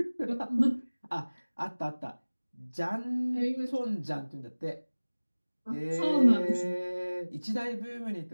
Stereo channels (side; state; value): both; inverted; correlation -1.00